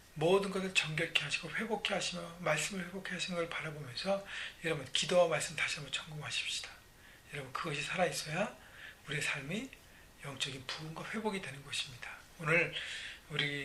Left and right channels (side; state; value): both; identical; correlation 1.00